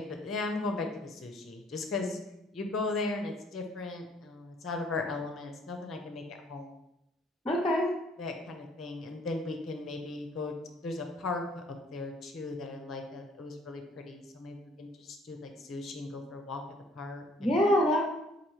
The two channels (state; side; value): normal; both; correlation 0.60